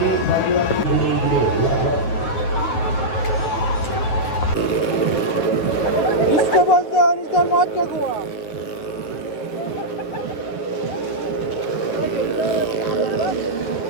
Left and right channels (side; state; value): right; late; 9.5 ms